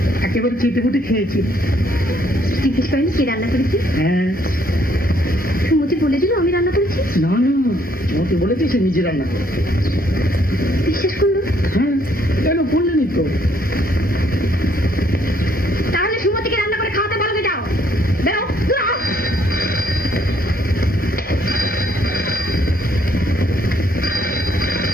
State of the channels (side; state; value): both; normal; correlation 0.67